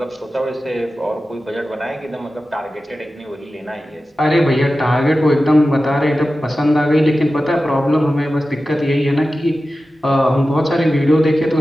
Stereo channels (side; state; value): both; normal; correlation 0.94